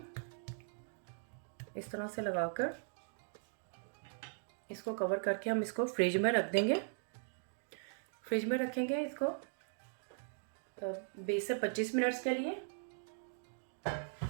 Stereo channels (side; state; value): left; silent; digital silence